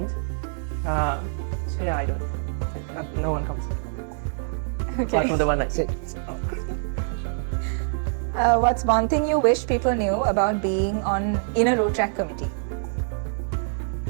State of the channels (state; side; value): silent; left; 62 dB below the other